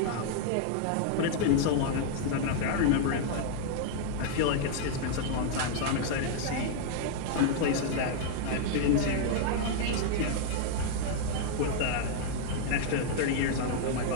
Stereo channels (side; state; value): both; different; correlation 0.00